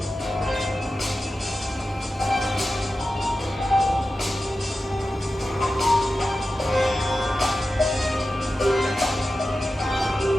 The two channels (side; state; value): both; normal; correlation 0.93